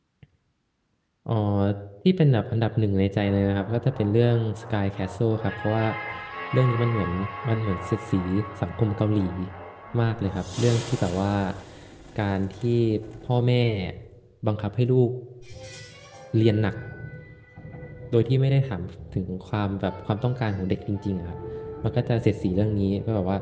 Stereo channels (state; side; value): identical; both; correlation 1.00